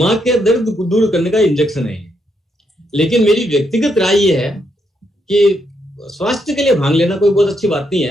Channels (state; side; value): normal; both; correlation 0.78